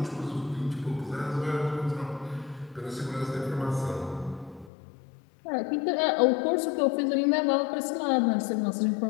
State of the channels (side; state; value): right; drops out; at 4.7 s